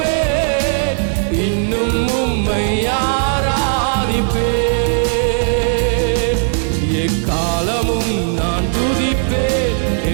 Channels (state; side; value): silent; left; digital silence